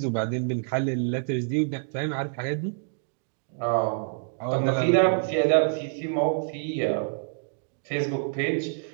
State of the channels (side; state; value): left; silent; digital silence